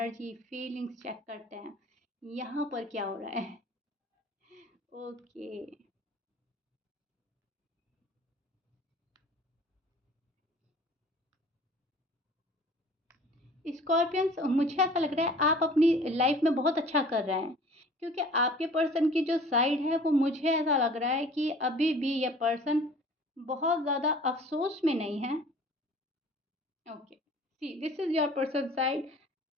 फीलिंग्स चेक करते हैं, यहाँ पर क्या हो रहा है। ओके, स्कॉर्पियंस, मुझे ऐसा लग रहा है आप अपनी लाइफ में बहुत अच्छा कर रहे हैं, क्योंकि आपके पर्सन की जो साइड है वो मुझे ऐसा लग रहा है कि अभी भी ये पर्सन बहुत ज़्यादा अफसोस में नहीं है। Okay, see this is your person side.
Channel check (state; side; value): normal; both; correlation 0.48